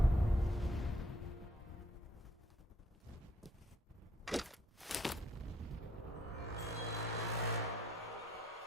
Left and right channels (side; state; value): both; normal; correlation 0.68